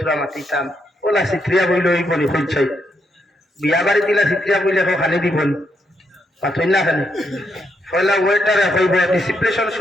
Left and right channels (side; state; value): both; normal; correlation 0.78